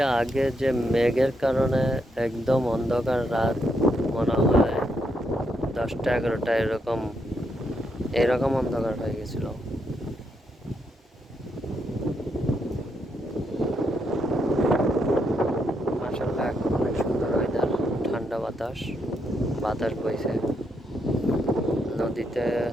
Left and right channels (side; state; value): both; normal; correlation 0.79